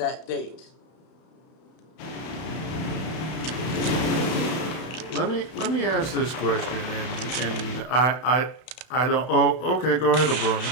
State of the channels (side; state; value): right; late; 32 ms